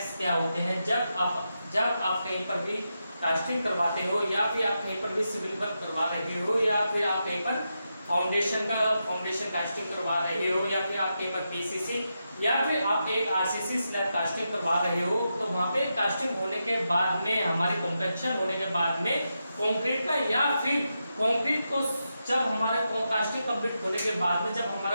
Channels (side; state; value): both; inverted; correlation -0.87